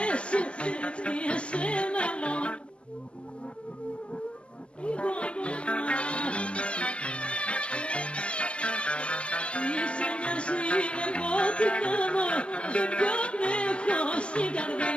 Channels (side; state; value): right; late; 0.059 ms